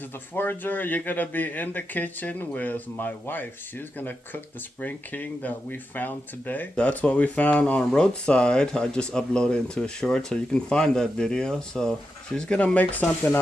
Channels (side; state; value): both; normal; correlation 0.88